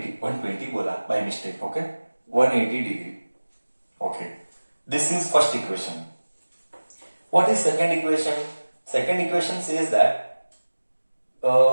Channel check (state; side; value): inverted; both; correlation -1.00